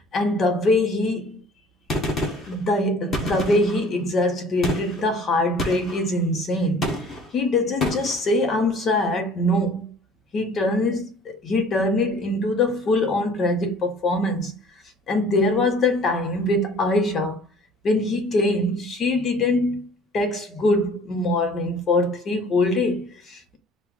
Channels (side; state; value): both; normal; correlation 0.51